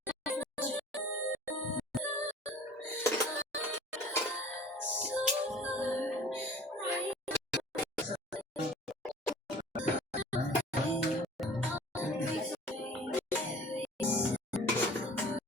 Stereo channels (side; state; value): both; normal; correlation 0.45